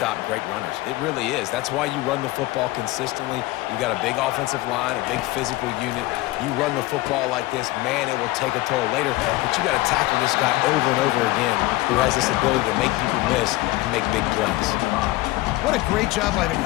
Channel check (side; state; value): right; quieter; 19.0 dB